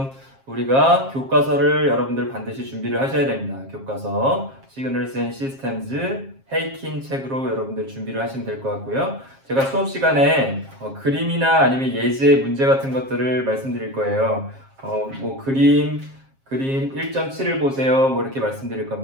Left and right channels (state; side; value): late; left; 7.5 ms